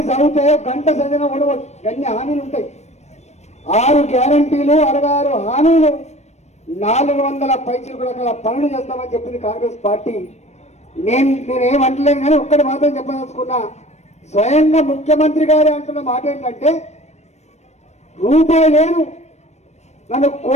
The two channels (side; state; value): right; late; 0.32 ms